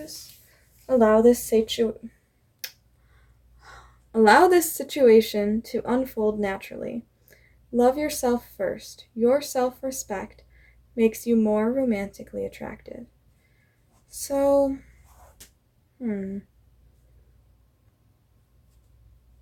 Allow this situation to unfold naturally. Love yourself first. Your self-respect makes you more romantically attractive. So, I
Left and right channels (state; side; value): identical; both; correlation 1.00